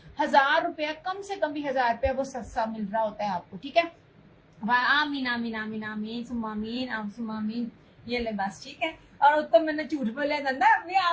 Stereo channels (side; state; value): both; identical; correlation 1.00